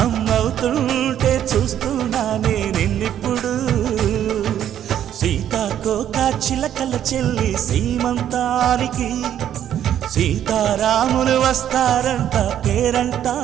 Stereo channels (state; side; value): quieter; left; 10.5 dB